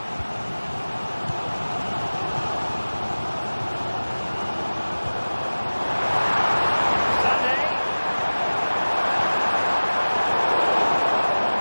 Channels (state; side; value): inverted; both; correlation -1.00